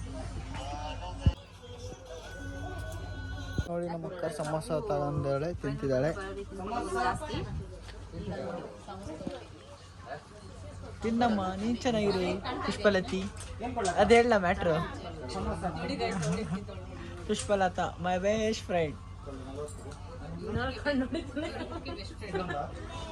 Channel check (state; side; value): identical; both; correlation 1.00